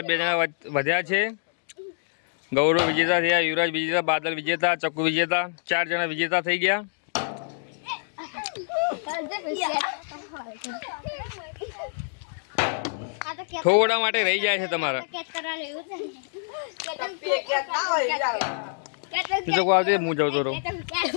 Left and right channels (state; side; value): silent; right; digital silence